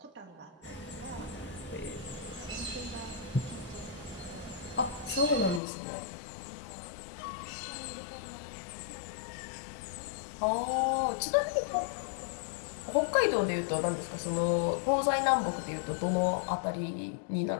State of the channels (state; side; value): drops out; right; at 5.6 s